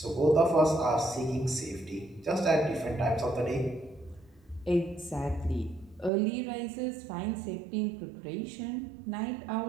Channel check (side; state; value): left; drops out; at 6.1 s